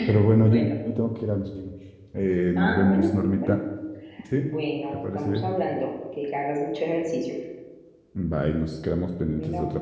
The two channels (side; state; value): both; identical; correlation 1.00